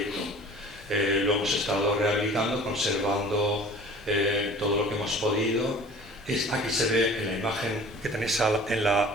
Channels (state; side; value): normal; both; correlation 0.45